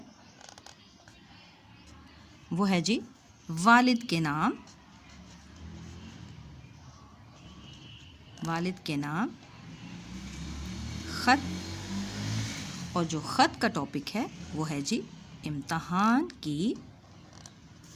वो है जी वालिद के नाम, वालिद के नाम ख़त। और जो ख़त का टॉपिक है वो है जी इम्तहान की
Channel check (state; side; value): identical; both; correlation 1.00